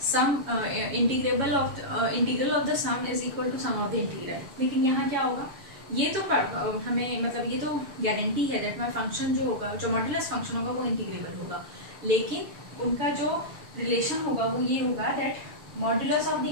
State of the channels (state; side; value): late; left; 7.2 ms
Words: Sum integrable of integral of the sum is equal to sum of the integral. लेकिन यहाँ क्या होगा, ये तो हमें मतलब ये तो गारंटी है दैट माय फंक्शन जो होगा, जो मॉड्यूलस फंक्शन होगा वो इंटीग्रेबल होगा, लेकिन उनका जो रिलेशन होगा वो ये होगा that modulus of the